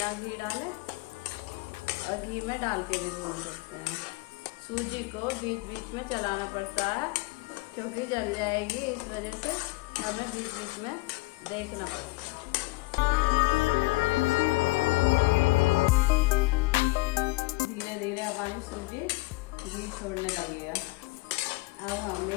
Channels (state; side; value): quieter; right; 23.0 dB